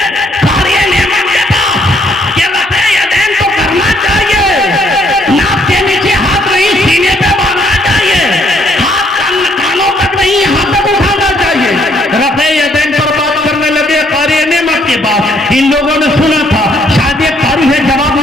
कार्य नेमत के पास ये वैसे यदेन तो करना चाहिए, नाक के नीचे हाथ नहीं सीने पे बांधना चाहिए, हाथ कानों तक नहीं यहाँ तक उठाना चाहिए। रफ़े यदैन पर बात करने लगे कार्य नेमत के बाद। इन लोगों ने सुना था शायद एक कारी है जवाब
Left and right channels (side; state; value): both; normal; correlation 0.68